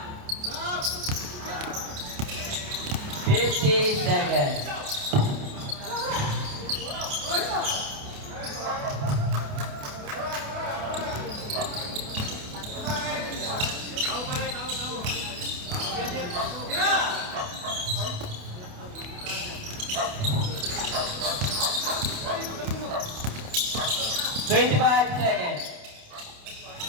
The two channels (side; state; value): left; late; 28 ms